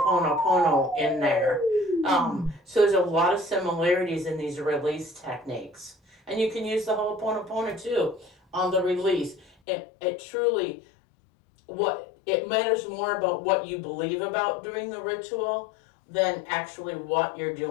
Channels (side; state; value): right; drops out; at 9.5 s